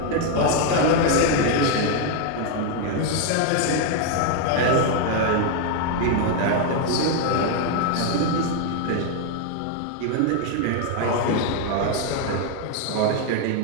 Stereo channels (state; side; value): different; both; correlation 0.01